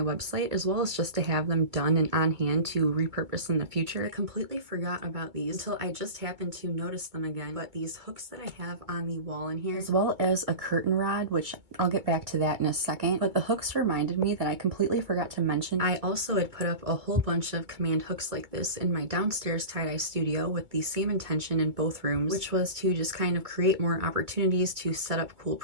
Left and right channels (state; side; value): late; left; 2.2 ms